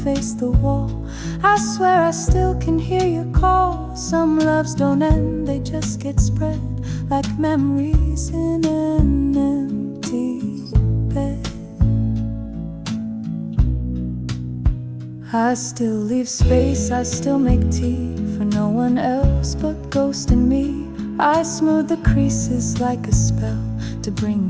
the wall, I swear I still can hear your call. Some loves don't end, they just get spread like memories in an empty bed. I still leave space, I still make tea for no one else but Ghost and me. I smooth the creases like a spell to bring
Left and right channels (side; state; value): both; identical; correlation 1.00